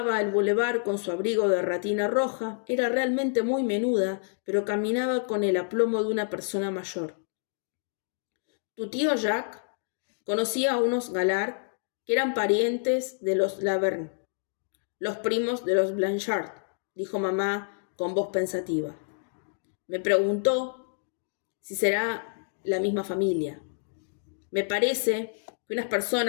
el bulevar con su abrigo de ratina roja. Era realmente muy menuda, pero caminaba con el aplomo de una persona mayor. Tu tío Jacques conocía a unos Gallard que eran parientes de los Laverne, los primos de los Blanchard, dijo mamá con voz pensativa. Me preguntó si será la misma familia. Me parece que unas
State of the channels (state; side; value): silent; right; digital silence